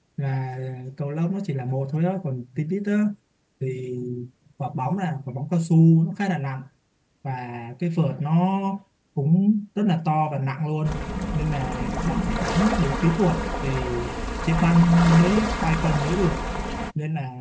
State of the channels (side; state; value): both; identical; correlation 1.00